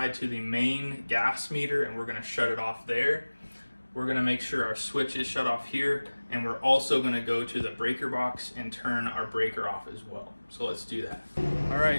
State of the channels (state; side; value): inverted; both; correlation -1.00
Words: to the main gas meter and we're going to shut it off there. We're going to make sure our switch is shut off here, and we're also going to go to the breaker box and turn our breaker off as well. So let's do that. All